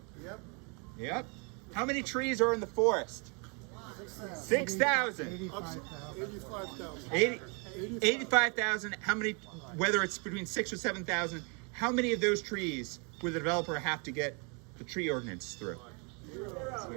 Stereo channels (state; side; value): quieter; left; 34.2 dB